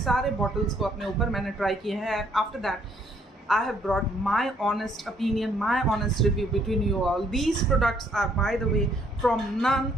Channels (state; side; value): normal; both; correlation 0.66